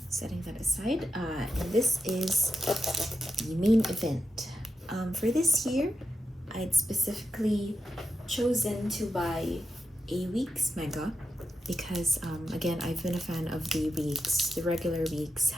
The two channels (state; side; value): normal; both; correlation 0.89